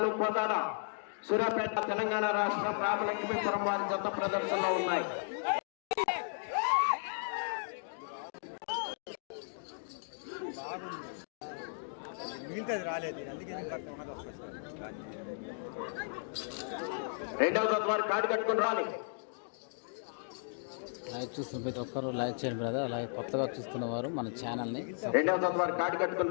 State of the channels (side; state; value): right; silent; digital silence